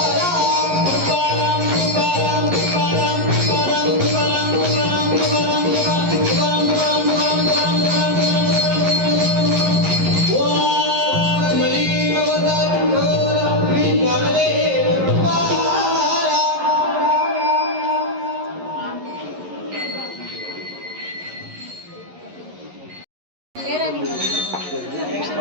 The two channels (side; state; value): left; late; 11 ms